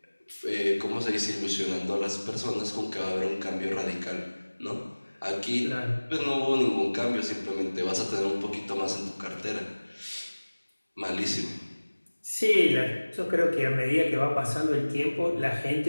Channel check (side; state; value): both; inverted; correlation -1.00